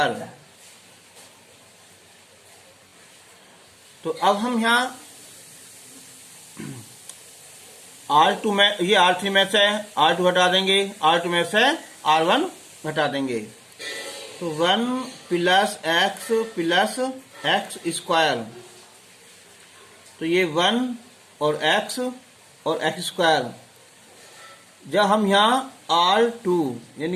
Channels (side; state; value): both; identical; correlation 1.00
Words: तो अब हम यहाँ R2 में, ये R3 में से R2 घटा देंगे, R2 में से R1 घटा देंगे। तो 1 प्लस एक्स स्क्वायर, तो ये 1 और एक्स स्क्वायर। जब हम यहाँ R2